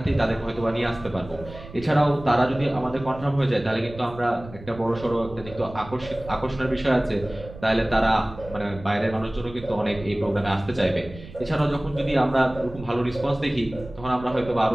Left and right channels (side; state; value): right; noise; rumble, 16 dB below the sound